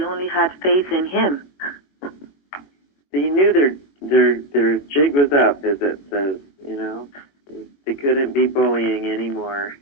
only had faith in him. They knew their jig was up, as it says. You know, they couldn't be bullying anymore.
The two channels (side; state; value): right; late; 21 ms